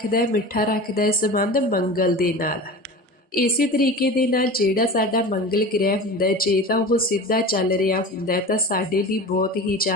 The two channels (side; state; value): both; normal; correlation 0.33